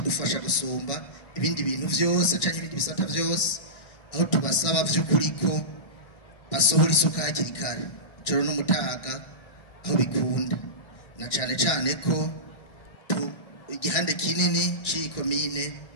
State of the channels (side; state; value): right; late; 1.6 ms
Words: gusumba ibindi bintu vyose canke ibindi bisata vyose, aho tubasaba vy'ukuri ko basohora isuka hakiri kare ijoro n'umutaga aho bikunda, na cyane cyane ko igihande kinini c'ikomine